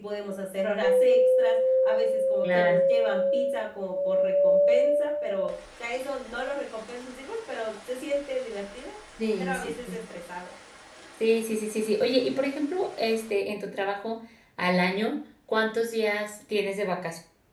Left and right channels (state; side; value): identical; both; correlation 1.00